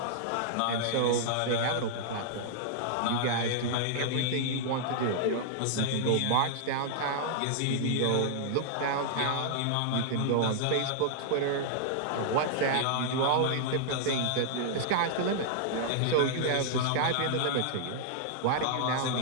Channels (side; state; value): both; different; correlation -0.01